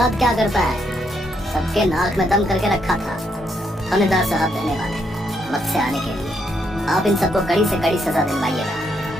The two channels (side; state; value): both; normal; correlation 0.76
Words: क्या करता है। सबके नाक में दम करके रखा था। थानेदार साहब धन्यवाद वक्त से आने के लिए। आप इन सबको कड़ी से कड़ी सजा दिलवाइएगा।